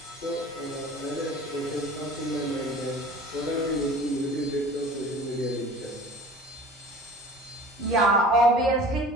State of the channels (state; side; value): normal; both; correlation 0.43